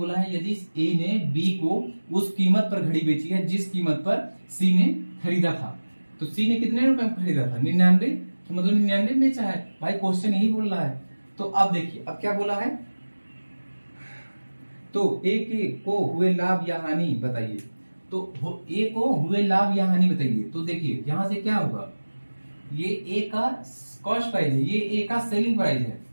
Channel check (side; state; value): both; inverted; correlation -1.00